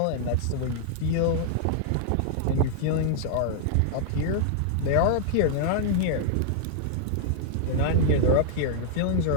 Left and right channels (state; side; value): different; both; correlation -0.01